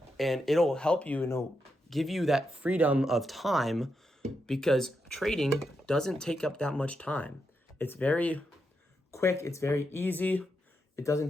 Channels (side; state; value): both; normal; correlation 0.84